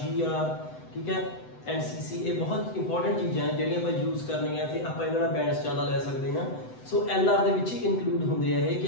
ਠੀਕ ਹੈ, NCC ਇਹ ਬਹੁਤ ਇੰਪੋਰਟੈਂਟ ਚੀਜ਼ਾਂ ਜਿਹੜੀਆਂ ਆਪਾਂ ਯੂਜ਼ ਕਰਨੀਆਂ ਤੇ ਆਪਾਂ ਇਹਨਾਂ ਦਾ ਬੈਂਡਸ ਜ਼ਿਆਦਾ ਲੈ ਸਕਦੇ ਹਾਂ। ਸੋ LR ਦੇ ਵਿੱਚ ਹੀ ਇਨਕਲੂਡ ਹੁੰਦੇ ਆ ਇਹ ਕਿ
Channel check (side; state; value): right; late; 7.9 ms